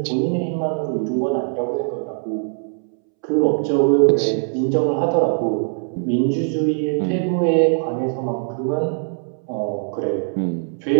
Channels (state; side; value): silent; left; 65 dB below the other